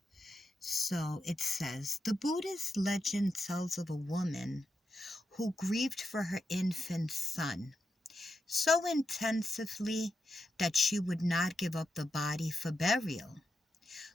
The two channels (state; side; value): normal; both; correlation 0.86